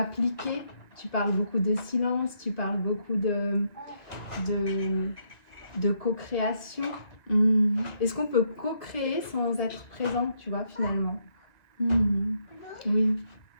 Tu parles beaucoup de silence, tu parles beaucoup de co-création. Est-ce qu'on peut co-créer sans être présent, tu vois, finalement? Oui.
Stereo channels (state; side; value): late; right; 2.0 ms